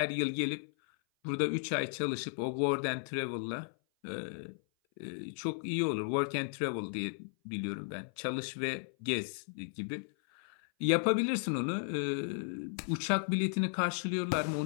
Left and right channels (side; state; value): right; silent; 55 dB below the other